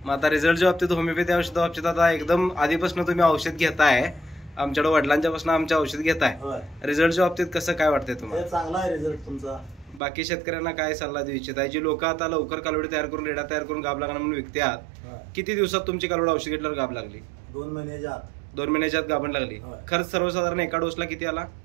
मग आता रिझल्टच्या बाबतीत, होमिओपॅथी औषधा बाबतीत आता एकदम आधीपासून तुम्ही औषध घेताय, आमच्याकडे वडिलांच्या पासून आमच्या औषध घेताय, रिझल्टच्या बाबतीत कसं काय वाटतंय तुम्हाला? चांगला आहे रिझल्ट तुमचा. बाकी शेतकऱ्यांना काय सल्ला देऊ इच्छित आहे? जी लोक आता लवकर कालवडी तयार करून रेडा तयार करून गाभ लागणार म्हणून विकतात, किती दिवसात तुमची कालवड औषध घेतल्यावर गाभ लागली? 2 महिन्याच्या आत. 2 महिन्याच्या आत गाभण लागली. खर्च सर्वसाधारण एका डोसला किती आला?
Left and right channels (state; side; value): drops out; left; at 10.0 s